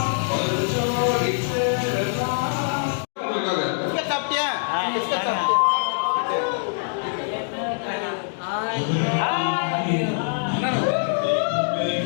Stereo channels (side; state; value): right; silent; digital silence